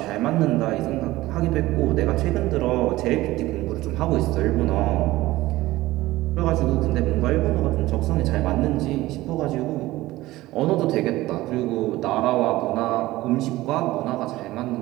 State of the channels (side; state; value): left; quieter; 17.5 dB